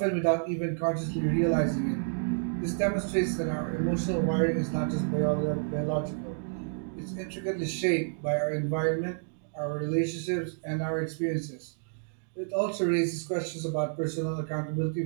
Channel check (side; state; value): left; silent; digital silence